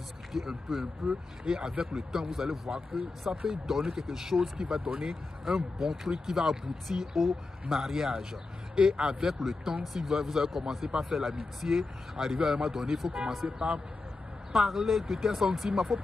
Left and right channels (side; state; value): right; quieter; 3.5 dB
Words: un peu. Et avec le temps, vous allez voir que ça peut donner quelque chose qui va donner un bon truc, qui va aboutir au mariage. Et avec le temps, si vous allez commencer par faire l'amitié, arriver à un moment donné, il faut commencer par parler de tes sentiments, il ne faut